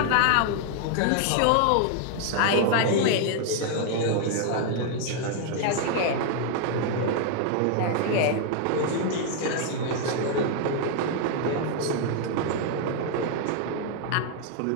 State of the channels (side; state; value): both; different; correlation 0.00